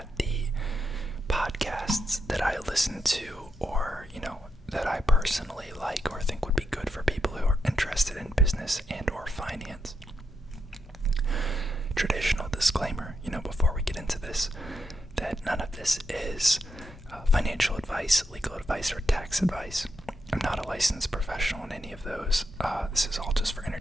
the podcasts that I listen to or, that I personally like or think would be good for people who are interested in business and or finance. Traditional disclaimer, before we get into this, that none of this is financial advice, legal advice, or tax advice. I'm not a licensed professional in any of those. This is all just for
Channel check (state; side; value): normal; both; correlation 0.83